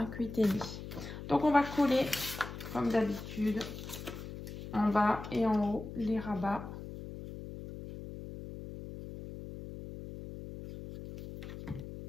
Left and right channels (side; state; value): left; noise; hum, 10 dB below the sound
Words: 8,5. Donc, on va coller, comme d'habitude, en bas et en haut, les rabats.